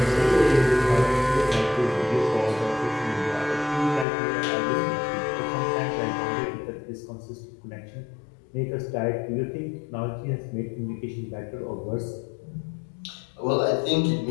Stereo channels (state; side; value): drops out; right; at 4.0 s